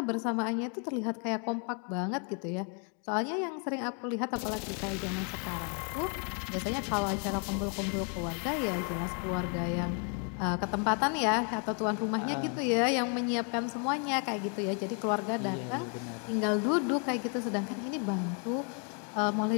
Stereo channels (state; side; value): quieter; right; 39.6 dB